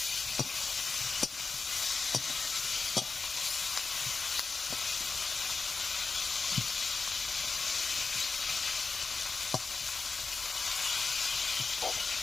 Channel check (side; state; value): right; quieter; 4.3 dB